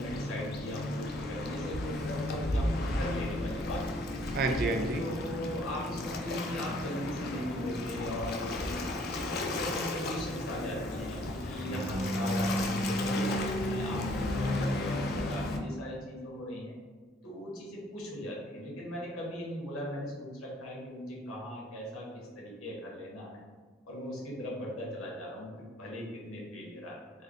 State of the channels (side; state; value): both; normal; correlation 0.62